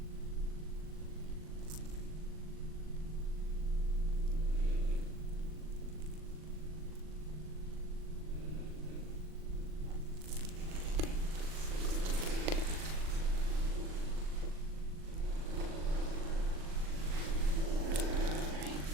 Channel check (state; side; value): late; left; 39 ms